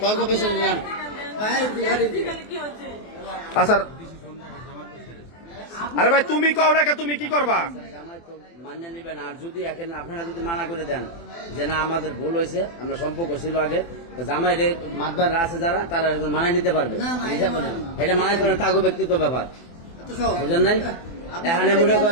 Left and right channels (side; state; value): right; late; 24 ms